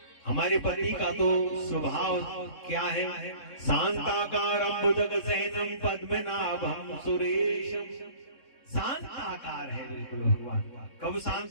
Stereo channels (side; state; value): right; late; 3.6 ms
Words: हमारे पति का तो स्वभाव क्या है, शांताकारं भुजगशयनं पद्मनाभं सुरेशम। शांत आकार है बिल्कुल भगवान। कब